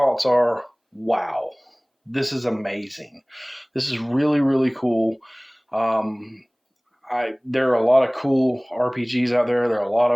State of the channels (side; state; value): both; identical; correlation 1.00